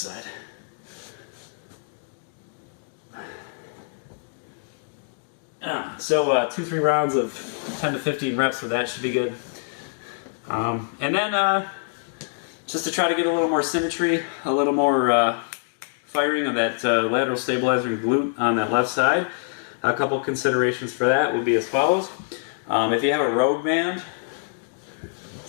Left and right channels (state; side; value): silent; right; digital silence